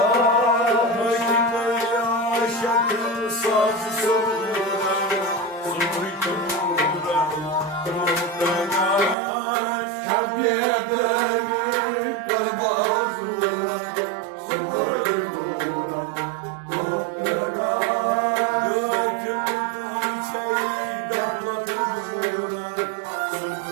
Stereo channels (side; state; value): left; drops out; at 9.2 s